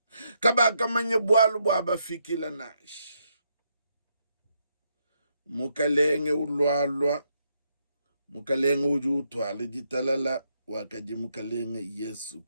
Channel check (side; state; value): both; inverted; correlation -0.78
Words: Kabaka manye bwalu bwabafikila nash. Mukalenge ulwalwa, mukalenge ujutwale jitalala wakaji mukalenge Yesu